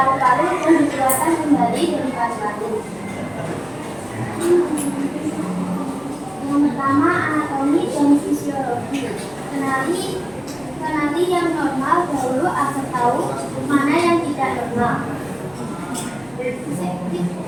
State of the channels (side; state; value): left; noise; hum, 25 dB below the sound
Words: dan dikeluarkan kembali dari paru-paru. Yang pertama anatomi dan fisiologi. Kenali yang normal dahulu agar tahu mana yang tidak normal.